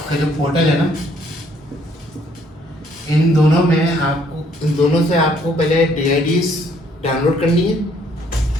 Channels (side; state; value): both; normal; correlation 0.65